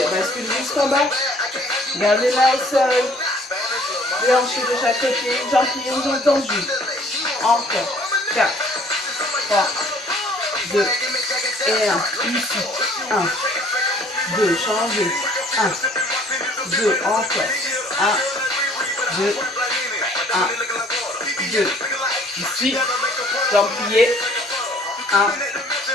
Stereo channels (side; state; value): both; normal; correlation 0.56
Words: Bascule jusqu'en bas. Gardez la au sol. Hanches de chaque côté. Jambes pliées ou jambes tendues. Encore. 4, 3, 2 et 1. Ici. 1, 2. Changez. 1, 2. Encore. 1, 2, 1, 2. Ici. Jambes pliées. 1,